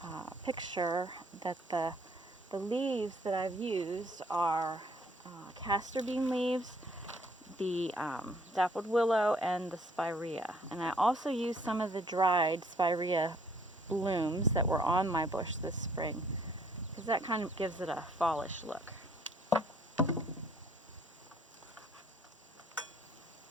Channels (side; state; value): both; normal; correlation 0.62